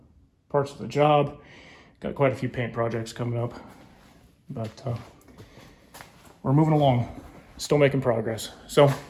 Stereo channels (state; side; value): identical; both; correlation 1.00